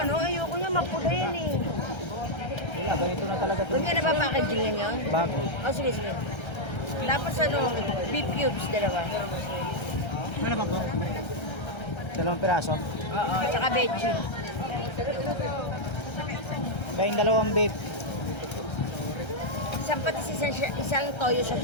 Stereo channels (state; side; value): late; right; 1.3 ms